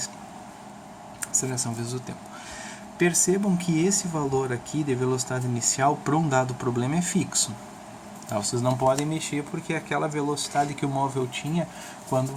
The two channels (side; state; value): both; identical; correlation 1.00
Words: a aceleração vezes o tempo. Percebam que esse valor aqui de velocidade inicial para um dado problema é fixo. Vocês não podem mexer porque é aquela velocidade que o móvel tinha quando